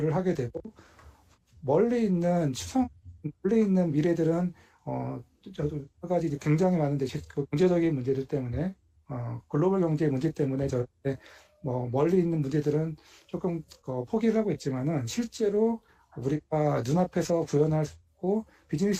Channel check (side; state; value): both; identical; correlation 1.00